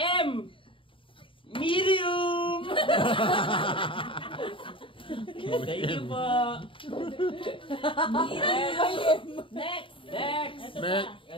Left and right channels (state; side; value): late; right; 0.25 ms